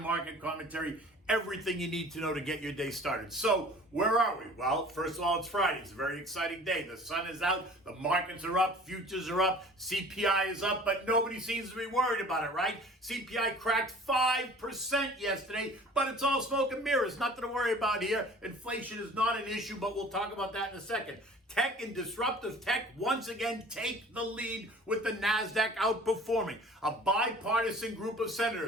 market commentary, everything you need to know to get your day started. So, where are we? Well, first of all, it's Friday. It's a very exciting day. The sun is out, the markets are up, futures are up, CPI is up, but nobody seems to be worried about it, right? CPI cracked 5% yesterday, but it's all smoke and mirrors. Nothing to worry about here. Inflation is not an issue, but we'll talk about that in a second. Tech and disruptive tech once again take the lead with the NASDAQ outperforming. A bipartisan group of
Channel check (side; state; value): both; normal; correlation 0.47